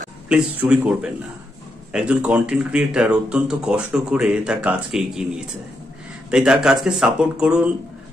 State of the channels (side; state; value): both; normal; correlation 0.82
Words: প্লিজ চুরি করবেন না। একজন কন্টেন্ট ক্রিয়েটার অত্যন্ত কষ্ট করে তার কাজকে এগিয়ে নিয়েছে, তাই তার কাজকে সাপোর্ট করুন,